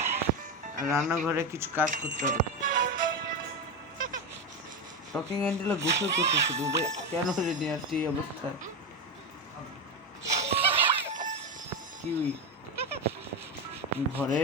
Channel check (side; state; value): both; normal; correlation 0.14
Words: আর রান্নাঘরে কিছু কাজ করতে হবে। টকিং অ্যান্ডেলে গোসল করতেছিল, কেন রেডি আসছে এই অবস্থায়? কি ঘরে